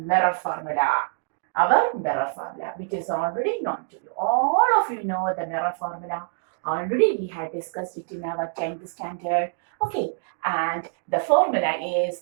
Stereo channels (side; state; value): left; silent; digital silence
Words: formula, our mirror formula, which is already known to you. All of you know the mirror formula. Already we had discussed it in our 10th standard. Okay, and the formula is